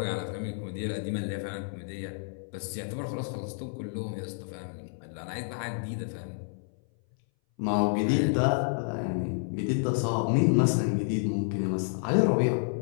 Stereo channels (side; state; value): right; silent; 58 dB below the other